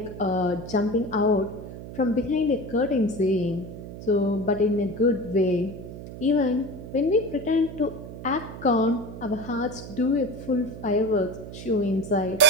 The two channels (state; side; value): noise; right; hum, 11 dB below the sound